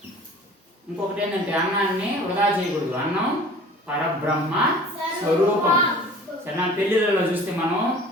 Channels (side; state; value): both; normal; correlation 0.45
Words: ఇంకొకటి ఏంటంటే అన్నాన్ని వృధా చేయకూడదు. అన్నం పరబ్రహ్మ స్వరూపం. సరే, నా పెళ్ళిళ్ళలో చూస్తే మనం